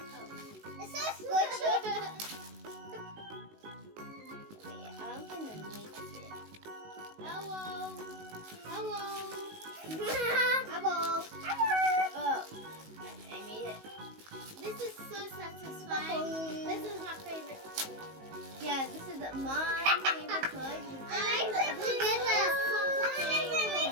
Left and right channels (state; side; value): late; left; 19 ms